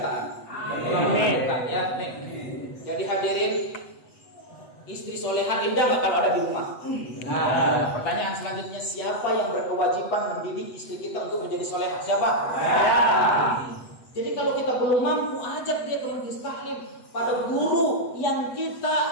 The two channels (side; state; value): right; late; 8.0 ms